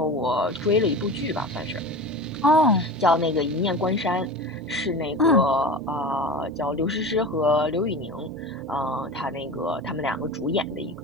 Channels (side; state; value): both; normal; correlation 0.31